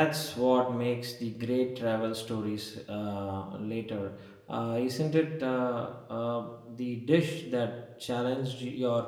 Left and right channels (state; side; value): identical; both; correlation 1.00